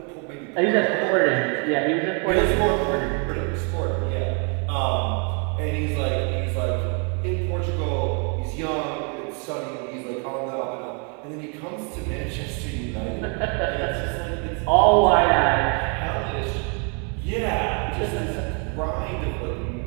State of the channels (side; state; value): left; quieter; 37.4 dB